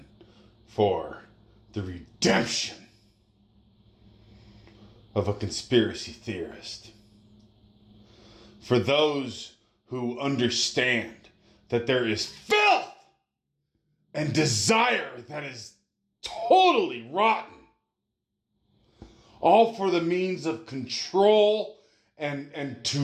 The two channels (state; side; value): identical; both; correlation 1.00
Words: for the redemption of a conspiracy theorist. For those who understand that there is filth and desire that is totally rotten, all for the means of control and